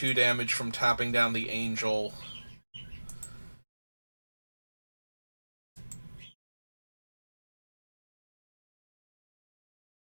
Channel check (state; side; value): inverted; both; correlation -1.00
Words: damage from tapping down the Angel.